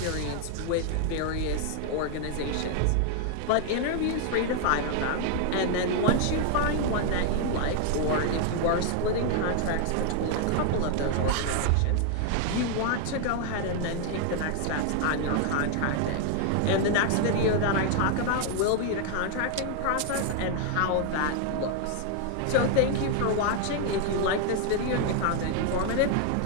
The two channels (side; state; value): both; different; correlation 0.00